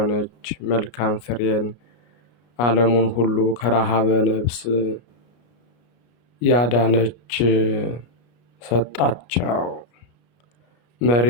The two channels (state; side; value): late; right; 33 ms